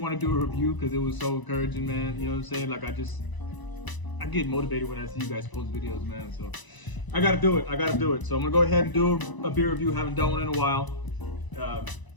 to do a review because it was so encouraging, man. You know what I'm saying? Like, I get motivated when I see you guys post videos, man. So I gotta do it. So I'm gonna go ahead and do a beer review. Haven't done one in a while.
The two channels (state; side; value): late; right; 1.0 ms